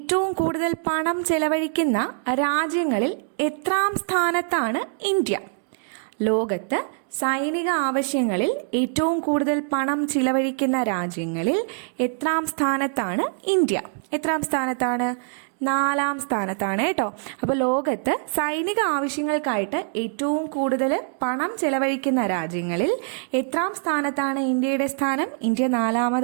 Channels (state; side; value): silent; left; 60 dB below the other